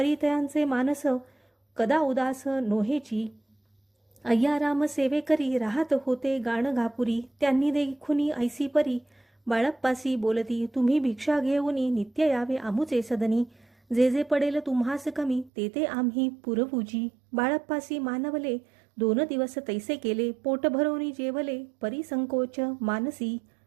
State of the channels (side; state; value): left; drops out; at 15.5 s